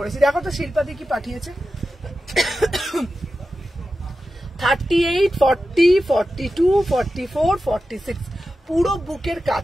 দেখো তো শিল্পাদি কি পাঠিয়েছে। 38, 40, 42, 44, 46 পুরো বুকের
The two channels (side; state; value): both; normal; correlation 0.92